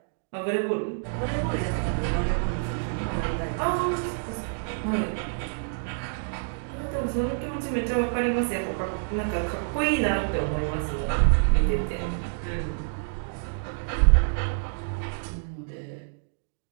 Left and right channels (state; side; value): silent; left; digital silence